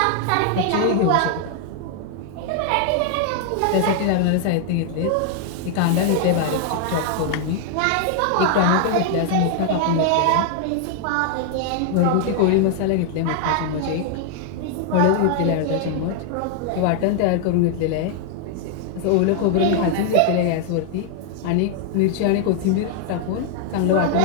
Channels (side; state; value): both; different; correlation 0.00